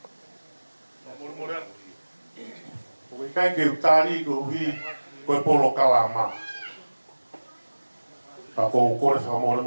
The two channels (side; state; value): both; inverted; correlation -1.00